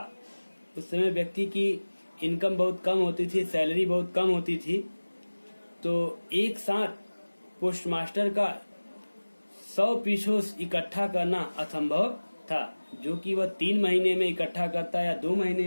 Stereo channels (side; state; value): both; inverted; correlation -1.00